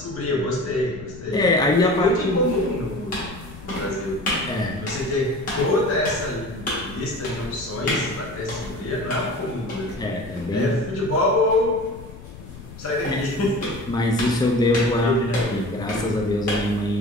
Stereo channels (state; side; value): noise; left; rumble, 16 dB below the sound